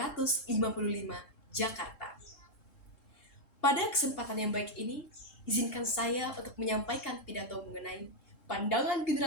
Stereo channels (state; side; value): late; right; 3.7 ms